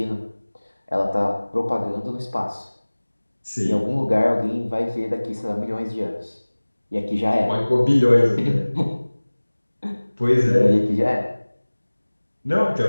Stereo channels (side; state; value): both; inverted; correlation -1.00